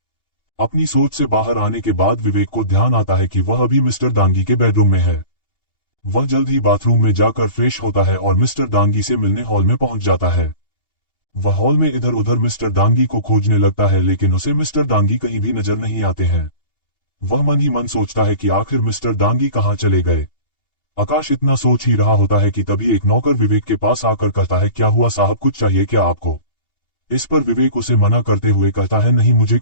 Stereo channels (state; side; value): late; right; 2.8 ms